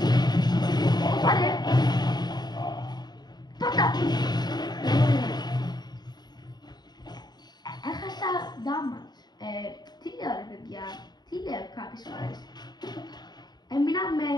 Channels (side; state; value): right; late; 0.20 ms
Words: Πάρε. Πάτα. Έχασα damage. Τι λέω ρε παιδιά, τι λέω κάποιες φορές. Έμεινα με